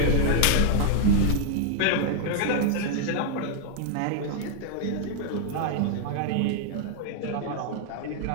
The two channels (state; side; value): different; both; correlation 0.00